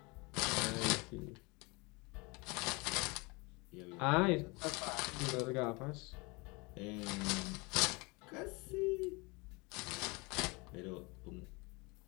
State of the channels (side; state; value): right; quieter; 27.1 dB